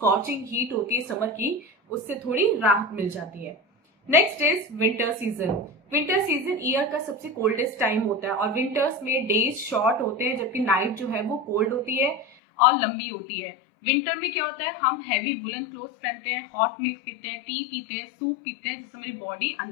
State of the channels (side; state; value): right; drops out; at 12.4 s